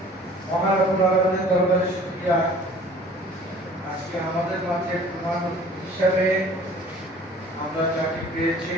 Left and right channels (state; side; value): normal; both; correlation 0.49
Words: মহান আল্লাহর দরবারে শুকরিয়া আজকে আমাদের মাঝে প্রধান হিসেবে আমরা যাকে পেয়েছি